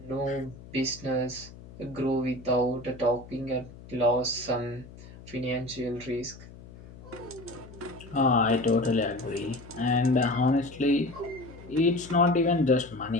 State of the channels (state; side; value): noise; left; hum, 18 dB below the sound